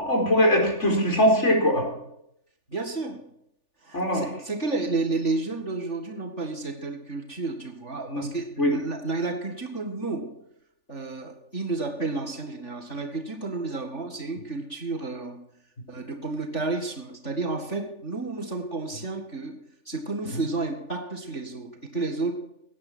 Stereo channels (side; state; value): right; late; 3.4 ms